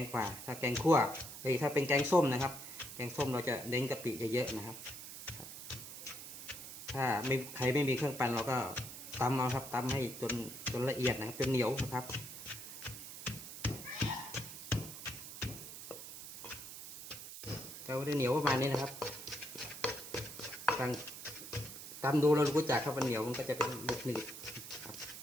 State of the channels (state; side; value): noise; right; hiss, 11 dB below the sound